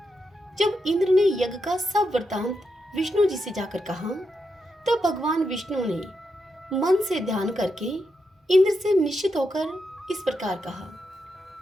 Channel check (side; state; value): both; normal; correlation 0.84